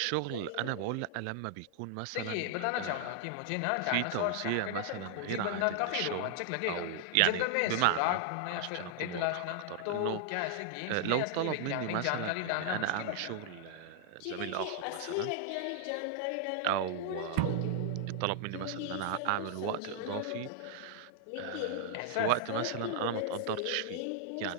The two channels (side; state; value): both; different; correlation 0.00